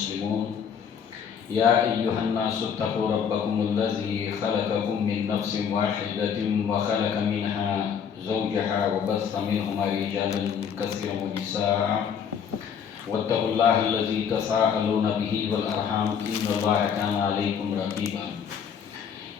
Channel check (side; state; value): right; quieter; 7.5 dB